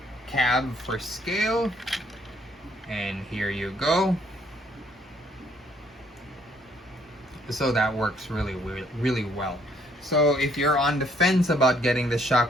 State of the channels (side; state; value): both; normal; correlation 0.66